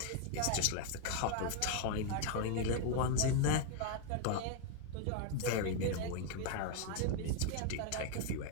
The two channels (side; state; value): both; different; correlation 0.00